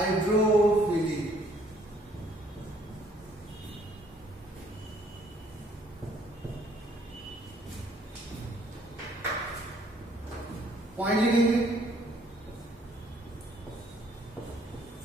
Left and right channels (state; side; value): normal; both; correlation 0.63